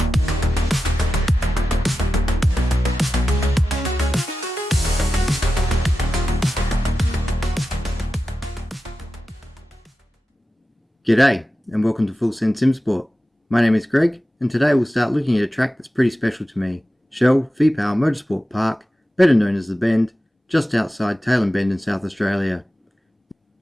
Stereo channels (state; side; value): normal; both; correlation 0.93